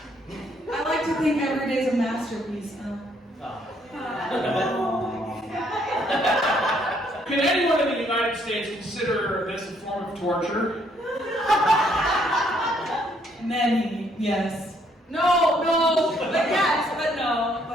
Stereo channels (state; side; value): normal; both; correlation 0.68